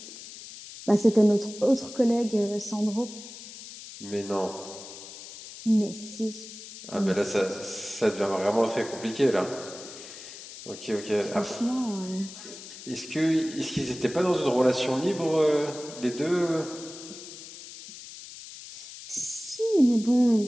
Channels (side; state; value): left; noise; hiss, 14 dB below the sound